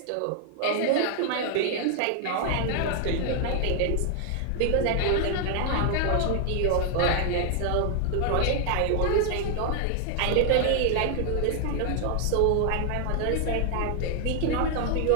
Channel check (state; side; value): different; both; correlation 0.00